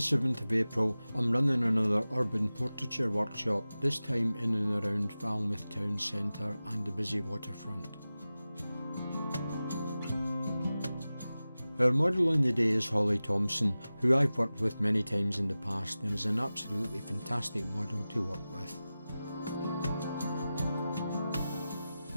of April, I'm running another urban portraiture workshop, this time in and around Falmouth town centre and the busy waterfront. Our model on the day is Holly Thompson, who I've worked with many times in the past and is an absolutely fantastic model to work with.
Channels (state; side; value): inverted; both; correlation -0.95